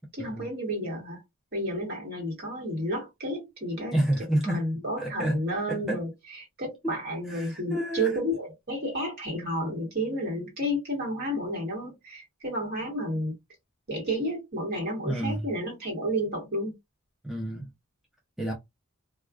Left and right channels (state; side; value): normal; both; correlation 0.34